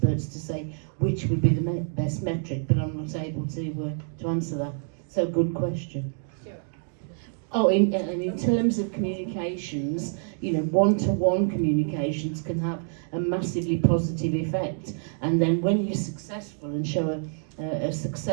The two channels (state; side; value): silent; left; digital silence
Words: to say which would be the best metric, but I'm not able to answer that. So good question. Oh, in terms of communications, you know, one-to-one communications can have a massively positive effect. And then when you're successful and show a